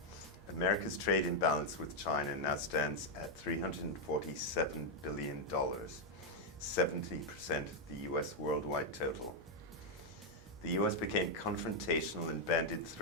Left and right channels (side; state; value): both; normal; correlation 0.01